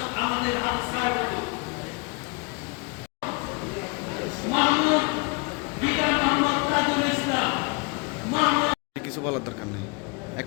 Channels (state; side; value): quieter; right; 29.8 dB